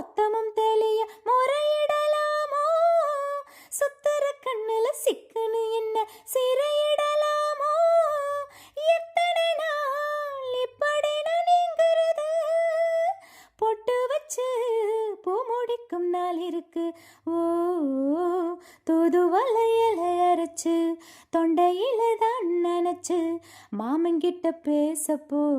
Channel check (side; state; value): both; identical; correlation 1.00